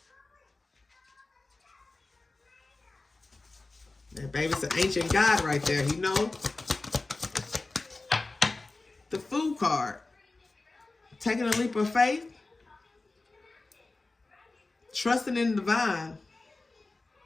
That baby's an ancient god right there, you know. The Fool card. Taking a leap of faith. Trusting in the divine.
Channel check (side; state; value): right; quieter; 3.3 dB